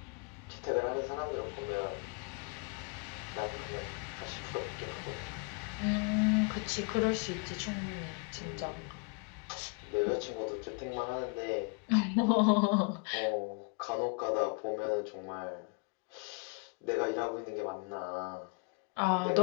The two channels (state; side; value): quieter; right; 32.6 dB